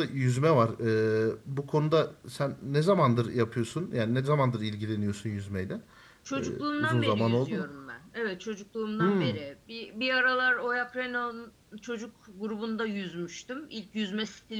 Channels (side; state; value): both; identical; correlation 1.00